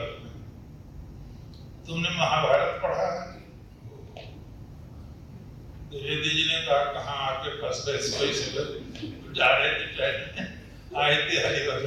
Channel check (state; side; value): identical; both; correlation 1.00